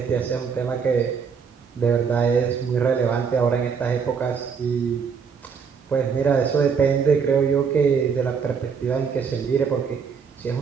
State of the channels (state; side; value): quieter; left; 6.2 dB